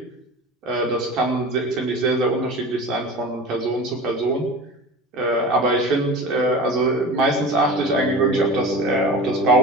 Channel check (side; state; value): both; normal; correlation 0.33